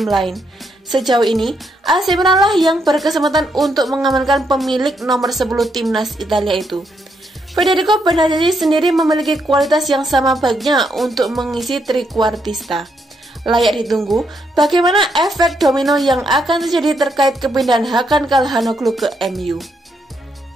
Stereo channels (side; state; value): both; normal; correlation 0.77